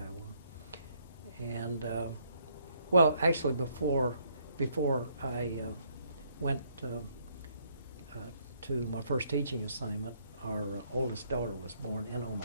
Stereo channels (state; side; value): inverted; both; correlation -0.69